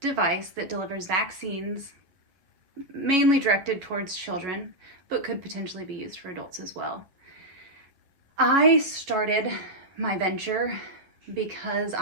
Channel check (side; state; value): left; late; 11 ms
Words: that delivers vaccines mainly directed towards children, but could potentially be used for adults as well. I started my venture because